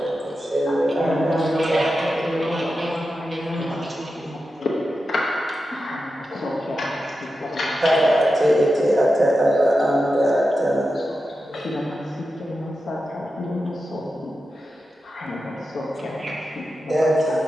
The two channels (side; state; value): both; normal; correlation 0.91